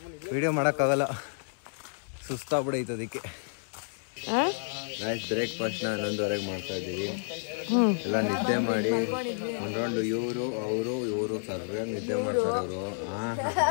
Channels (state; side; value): silent; right; 58 dB below the other